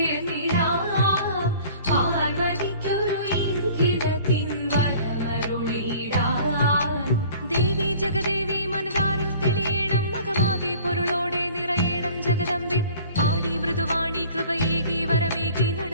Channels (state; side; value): inverted; both; correlation -0.48